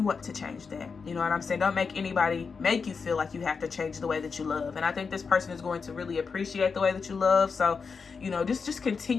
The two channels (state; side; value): quieter; right; 5.3 dB